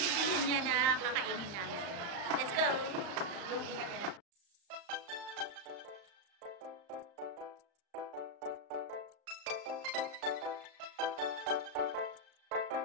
niya na kakainin namin. Let's go!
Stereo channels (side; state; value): left; late; 35 ms